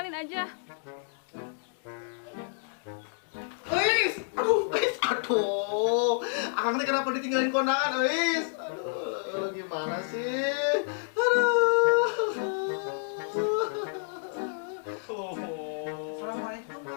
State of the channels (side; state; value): right; silent; digital silence